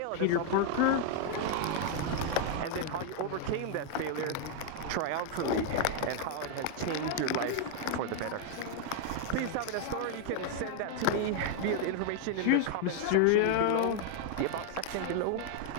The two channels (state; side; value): different; both; correlation 0.00